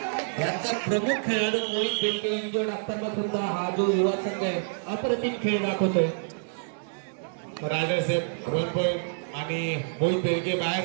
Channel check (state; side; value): silent; left; digital silence